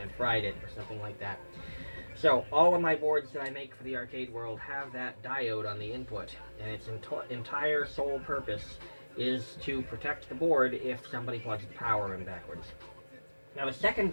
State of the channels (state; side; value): inverted; both; correlation -1.00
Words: fried it or something like that. So all of my boards that I make for the arcade world have that diode on the input, and its entire sole purpose is to protect the board if somebody plugs the power in backwards. Now the second